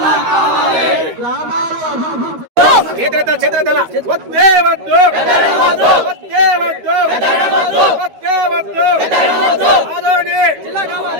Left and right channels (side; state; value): left; late; 13 ms